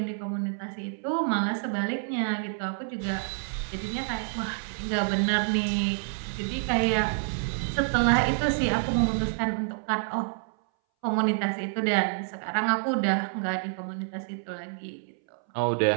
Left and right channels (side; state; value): left; silent; 59 dB below the other